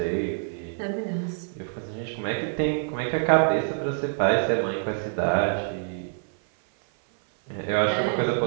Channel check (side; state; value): left; silent; 57 dB below the other